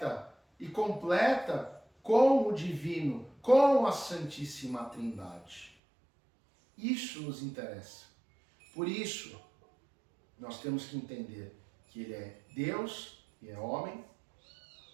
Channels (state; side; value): drops out; left; at 5.7 s